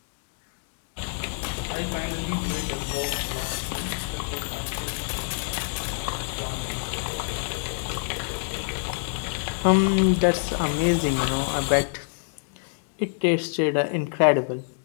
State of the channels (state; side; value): silent; right; digital silence